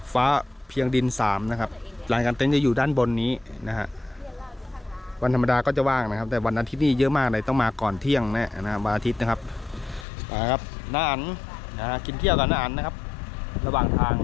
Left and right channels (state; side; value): drops out; right; at 10.1 s